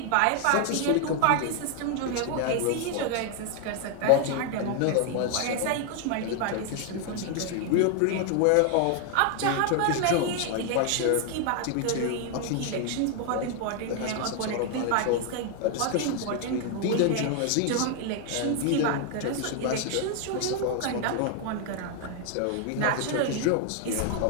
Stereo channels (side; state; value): both; different; correlation 0.00